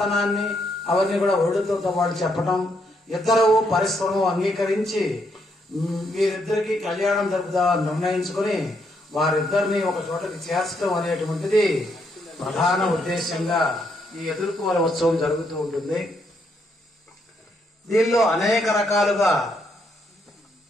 అవన్నీ కూడా వరుడితో పాటు చెప్పటం, ఇద్దరు పరస్పరం అంగీకరించి వీరిద్దరికి కళ్యాణం జరుపుదామని నిర్ణయించుకుని వారిద్దరిని ఒక చోటకి చేర్చడం అనేటువంటిది ప్రధాన ఉద్దేశంగా ఈ ఎదుర్కోల ఉత్సవం జరుగుతూ ఉంటుంది. దీనిలో అనేక రకాలుగా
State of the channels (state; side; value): normal; both; correlation 0.75